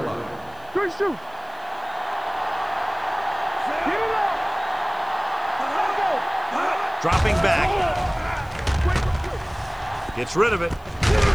line. Good shoot. Get it up. Let's go. Dropping back. Gets rid of it.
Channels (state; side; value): noise; right; hiss, 29 dB below the sound